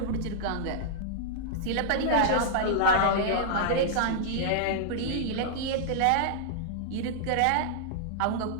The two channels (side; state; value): both; different; correlation -0.02